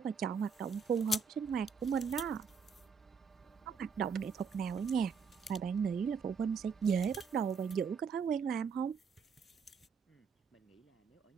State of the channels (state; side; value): quieter; left; 6.0 dB